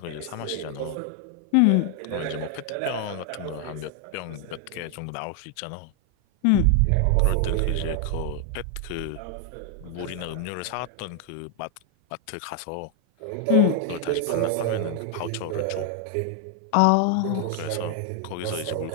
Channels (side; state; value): both; different; correlation 0.00